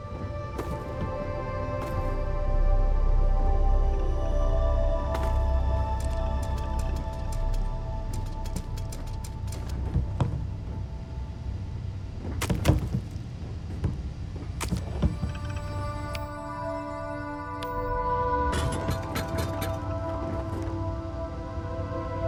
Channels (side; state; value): both; identical; correlation 1.00